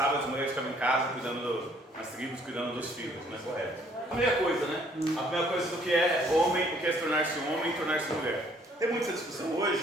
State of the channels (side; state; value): both; normal; correlation 0.62